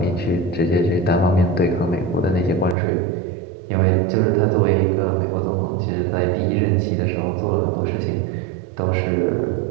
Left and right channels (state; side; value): drops out; left; at 2.8 s